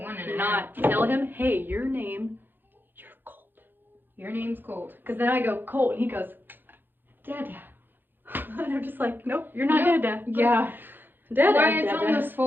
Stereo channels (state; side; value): late; left; 0.095 ms